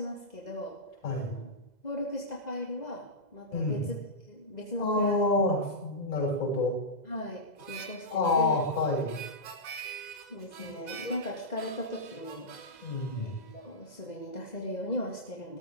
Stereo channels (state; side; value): late; right; 2.0 ms